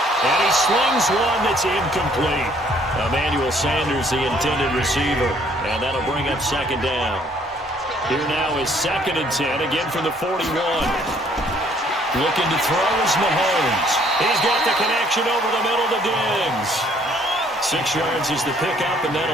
And he slings one that's incomplete. Emmanuel Sanders, the intended receiver. And that'll bring up second down. Here now is 2nd and 10, again from the 41. Looking to throw is Mahomes. He's got the connection over the middle to Diggs. 6 yards is the pickup, and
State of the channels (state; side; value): normal; both; correlation 0.62